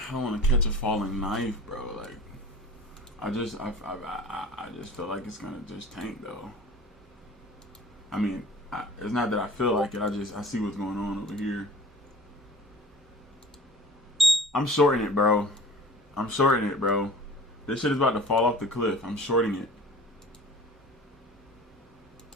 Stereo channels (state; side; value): normal; both; correlation 0.43